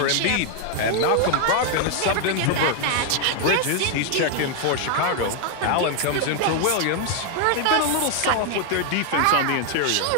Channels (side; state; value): both; different; correlation 0.00